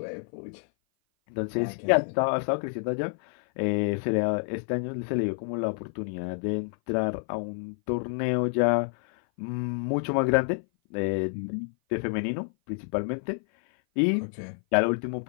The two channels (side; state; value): right; silent; 56 dB below the other